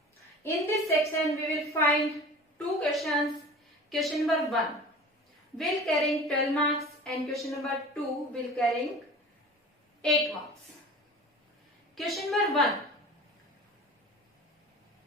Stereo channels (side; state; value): both; normal; correlation 0.39